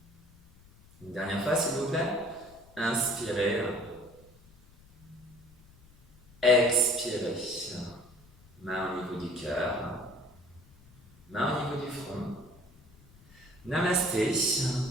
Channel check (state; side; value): noise; left; rumble, 26 dB below the sound